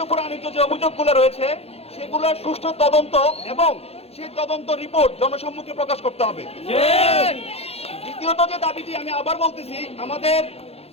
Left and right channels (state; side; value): late; right; 0.29 ms